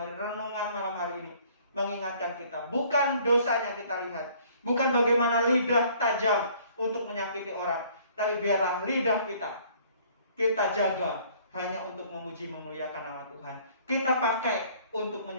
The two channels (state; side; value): inverted; both; correlation -0.57